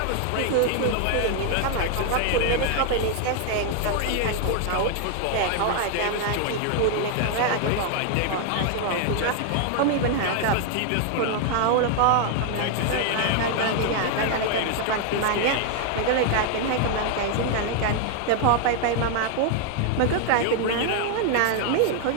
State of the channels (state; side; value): different; both; correlation 0.00